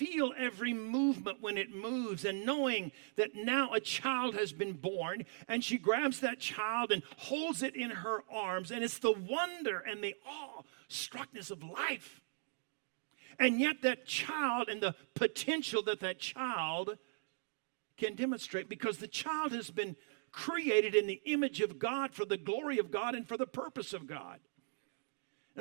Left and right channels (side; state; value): left; silent; digital silence